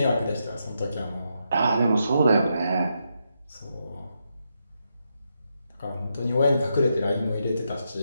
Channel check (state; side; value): inverted; both; correlation -0.83